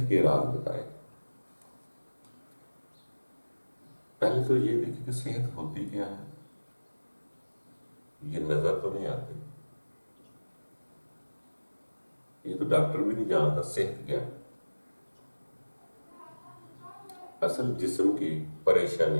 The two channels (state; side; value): inverted; both; correlation -1.00